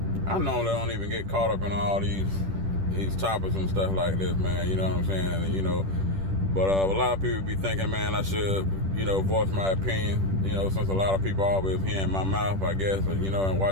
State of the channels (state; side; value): late; left; 10 ms